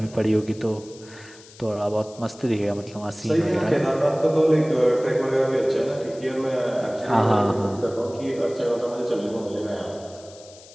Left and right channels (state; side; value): noise; left; hiss, 22 dB below the sound